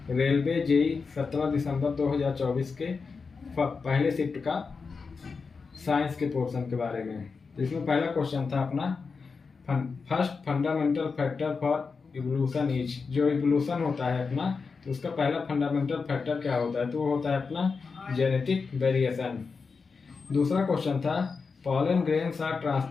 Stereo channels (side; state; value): right; quieter; 4.9 dB